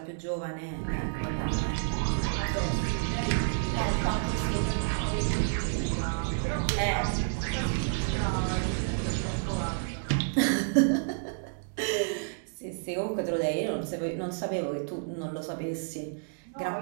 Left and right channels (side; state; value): left; silent; digital silence